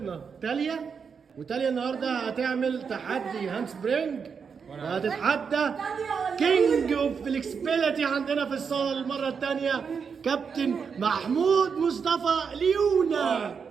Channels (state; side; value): quieter; left; 6.1 dB